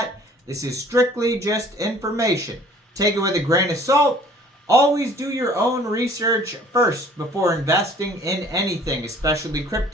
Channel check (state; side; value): normal; both; correlation 0.53